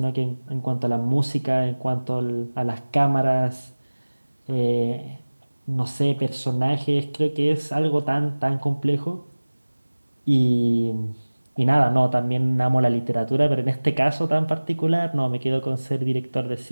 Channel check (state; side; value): inverted; both; correlation -1.00